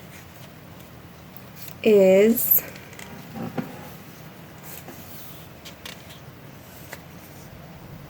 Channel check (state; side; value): identical; both; correlation 1.00